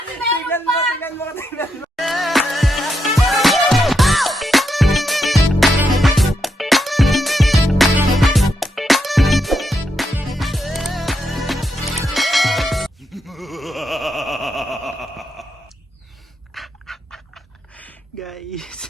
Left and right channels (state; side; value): normal; both; correlation 0.82